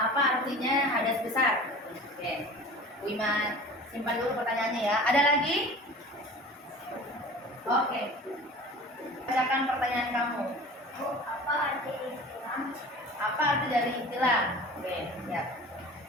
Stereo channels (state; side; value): normal; both; correlation 0.40